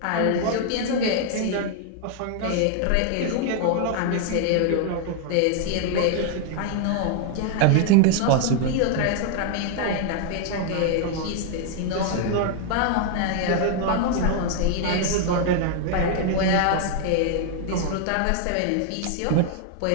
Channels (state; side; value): different; both; correlation 0.00